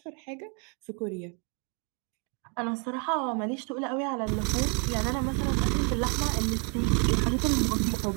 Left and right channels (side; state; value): left; quieter; 37.0 dB